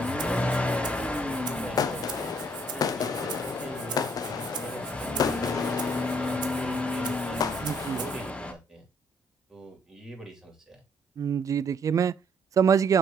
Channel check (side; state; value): both; normal; correlation 0.65